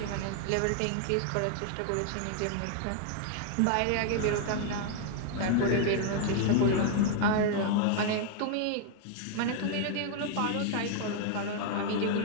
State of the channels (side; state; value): both; different; correlation 0.00